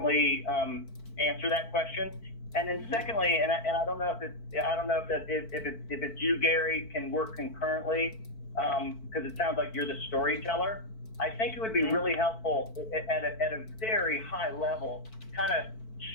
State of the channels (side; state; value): right; late; 4.5 ms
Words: answer that question, and then secondly, and I don't know if it's you, Gary, can work concurrently, because it sounds like you're the storyteller. I think it would be really helpful at a very high level, kind of